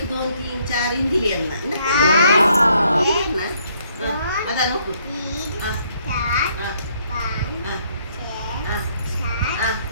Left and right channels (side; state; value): both; inverted; correlation -0.68